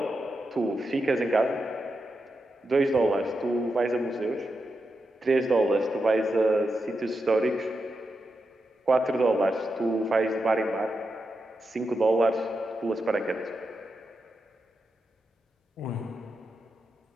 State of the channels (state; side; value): normal; both; correlation 0.87